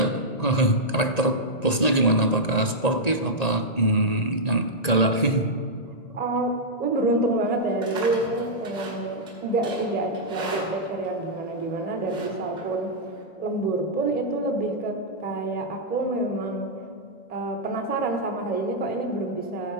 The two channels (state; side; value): late; right; 1.9 ms